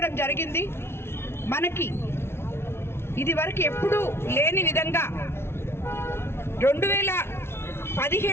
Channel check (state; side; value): late; right; 0.12 ms